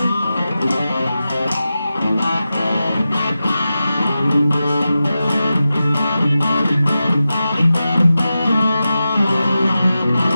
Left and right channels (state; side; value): inverted; both; correlation -0.92